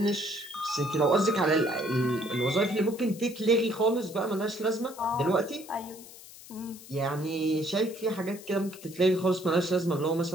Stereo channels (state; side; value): noise; left; hiss, 18 dB below the sound